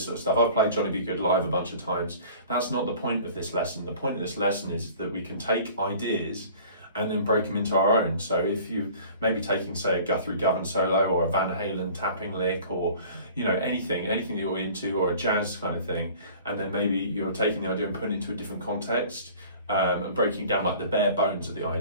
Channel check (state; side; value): inverted; both; correlation -0.47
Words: sort of stuff. I've played Johnny Be Good live a bunch of times. That's not the point of this lesson. The point of this lesson is that we can take ideas and then break them into our own. So if you maybe taking, say, a Guthrie Govan solo or a Van Halen tapping lick, or you know, anything that you're into, or a jazz kind of thing, and then maybe you're taking the idea and putting it into a different context, and breaking down like the bare bones of the